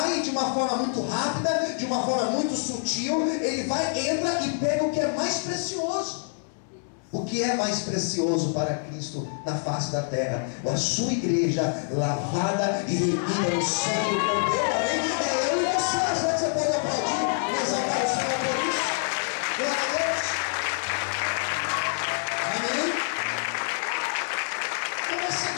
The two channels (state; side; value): silent; right; 61 dB below the other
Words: de uma forma muito rápida, de uma forma muito sutil, ele vai, entra e pega o que é mais precioso. O que é mais precioso para Cristo na face da terra? A sua igreja lavada e remida no sangue do Cordeiro. Amém? É eu e você. Será que você pode aplaudir e exaltar o Senhor por isso? Glória a Deus. Amém? Então vai ser